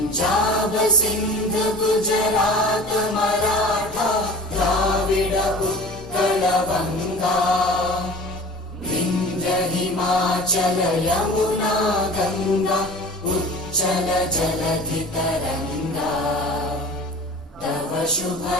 सिंध गुजरात मराठा द्राविड उत्कल गंगा विंध्य हिमाचल यमुना गंगा उच्चल जलधि तरंगा तव शुभ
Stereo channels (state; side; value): normal; both; correlation 0.40